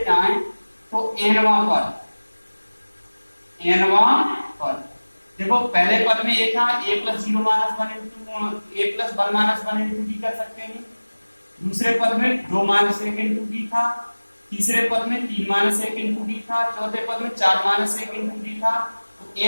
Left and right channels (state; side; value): inverted; both; correlation -1.00